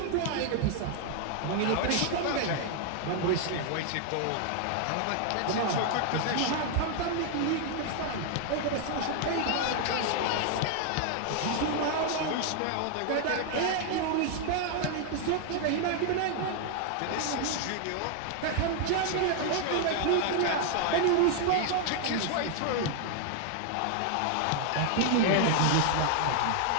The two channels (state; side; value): different; both; correlation 0.00